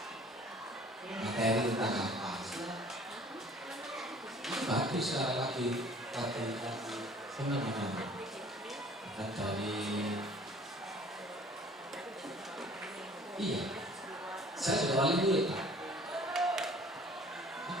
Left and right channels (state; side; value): normal; both; correlation 0.52